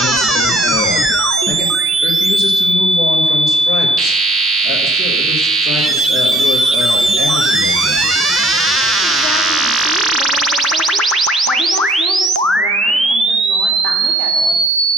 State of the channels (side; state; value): both; normal; correlation 0.60